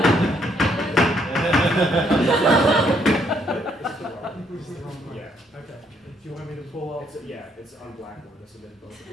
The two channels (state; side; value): normal; both; correlation 0.70